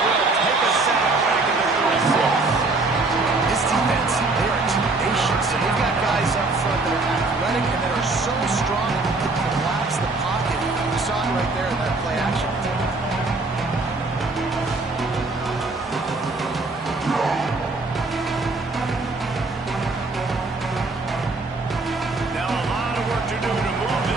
will take a sack back in the 36. This defense, they are tenacious. And they've got guys up front that are athletic and that are so strong that they can collapse the pocket. You saw it right there in that play action. Now a lot of work to do to move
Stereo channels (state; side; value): quieter; left; 3.4 dB